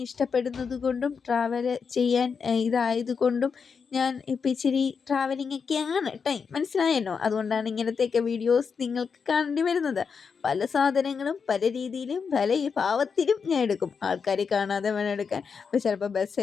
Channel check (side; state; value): right; quieter; 5.9 dB